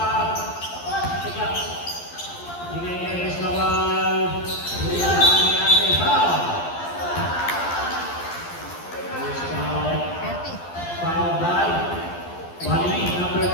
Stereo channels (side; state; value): right; late; 12 ms